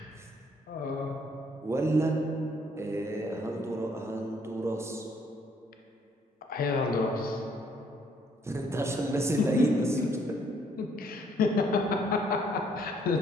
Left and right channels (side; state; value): both; normal; correlation 0.66